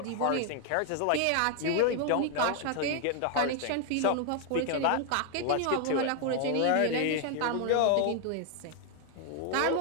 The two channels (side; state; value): both; different; correlation 0.00